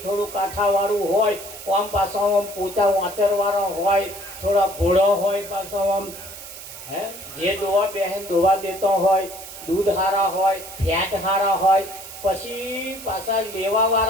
થોડું કાંઠાવાળું હોય, આમ પાછો આમ પોતા વાંચરવાળો હોય, થોડા ભોળો હોય, પાછો આમ જે દોવા બહેન દોવા દેતો હોય, દૂધ સારા હોય, ફેટ સારા હોય. પછી પાછા લેવા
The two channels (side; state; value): right; noise; hiss, 13 dB below the sound